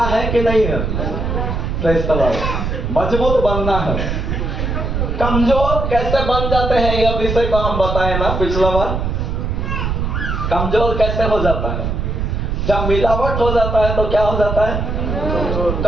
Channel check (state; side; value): noise; right; rumble, 2 dB below the sound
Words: है कि नहीं है? Praise the Lord. मजबूत बनना है। कमजोर कैसे बन जाते हैं यह विषय को हम बताए ना पिछला बार। कमजोर कैसे हो जाता है? जब मिलावट हो जाता है तो क्या हो जाता है?